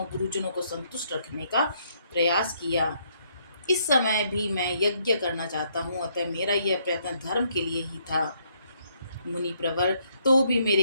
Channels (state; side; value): inverted; both; correlation -0.71